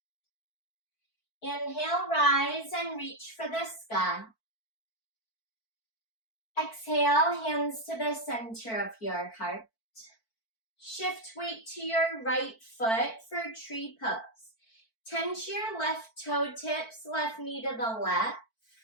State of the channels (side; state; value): right; late; 4.5 ms